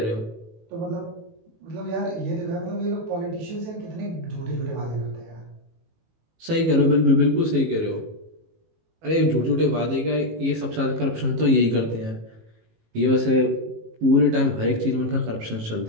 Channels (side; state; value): left; late; 18 ms